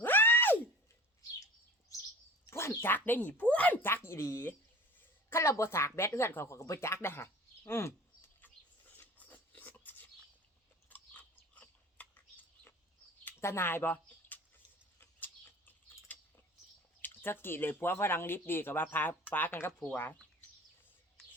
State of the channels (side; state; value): both; normal; correlation 0.42